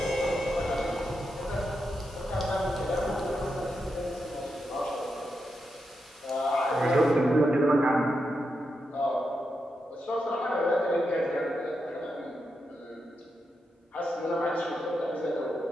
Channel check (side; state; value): both; normal; correlation 0.85